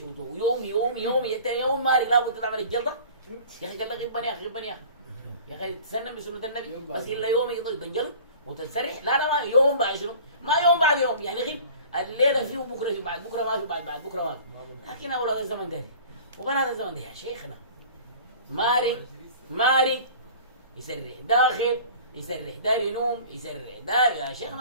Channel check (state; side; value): inverted; both; correlation -0.44